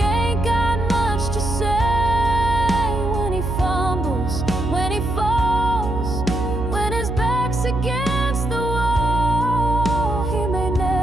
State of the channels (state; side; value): noise; right; hum, 3 dB below the sound